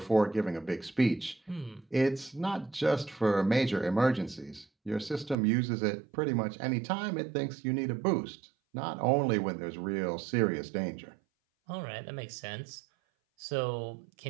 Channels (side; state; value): left; drops out; at 5.4 s